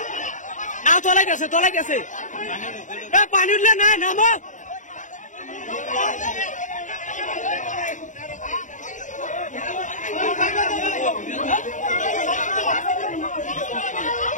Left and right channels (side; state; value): right; late; 0.36 ms